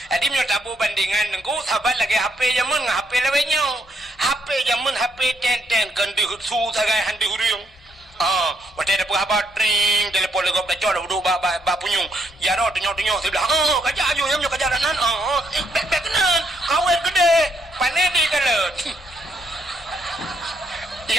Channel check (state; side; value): normal; both; correlation 0.74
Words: jadi minyak tabu bandingan nengku sahabat lagi HP jaman HP lewenya HP jaman HP ten kan dihusu sagai handi huriung waktu ada perahabat ring telepon legop lecor duduk bak punyung jaro tunyok sebelah kajak ayu yang minyak kajaranan bekenan kawin gede panedi kalian